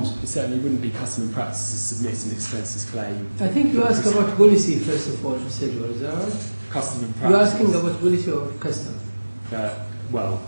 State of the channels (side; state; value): both; inverted; correlation -1.00